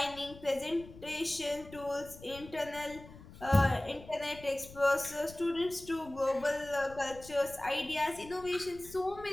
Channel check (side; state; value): left; noise; rumble, 18 dB below the sound